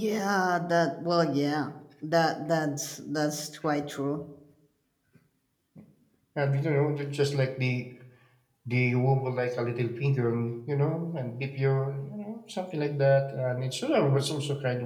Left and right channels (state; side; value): identical; both; correlation 1.00